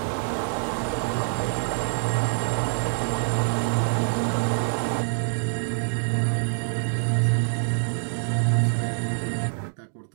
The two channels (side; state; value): left; silent; digital silence